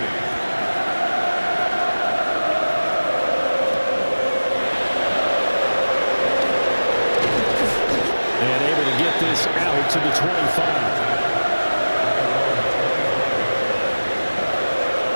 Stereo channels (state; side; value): inverted; both; correlation -1.00